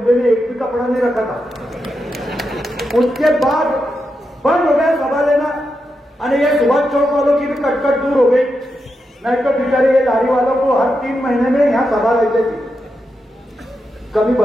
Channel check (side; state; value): both; normal; correlation 0.86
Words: में एक भी कपड़ा नहीं रखा था. उसके बाद बंद हो गया सभा लेना. और ये सुभाष चौक वालों की भी कटकट दूर हो गई. नहीं तो बेचारे ये लारी वालों को हर 3 महीने में यहाँ सभा रहती थी. कभी